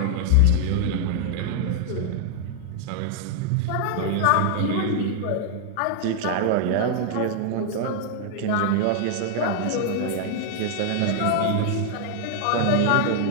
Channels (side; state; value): both; different; correlation 0.00